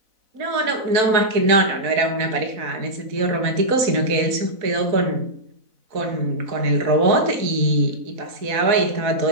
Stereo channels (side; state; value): left; late; 4.0 ms